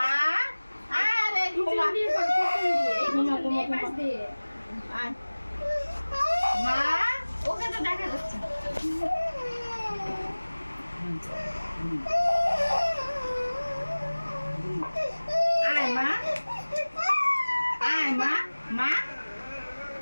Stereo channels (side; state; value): both; inverted; correlation -1.00